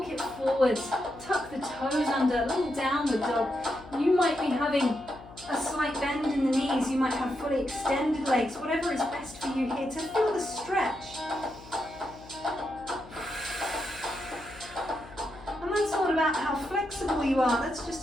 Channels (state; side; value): noise; left; hum, 19 dB below the sound